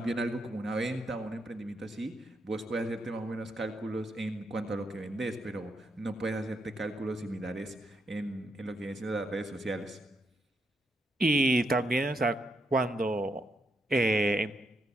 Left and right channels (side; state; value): both; normal; correlation 0.79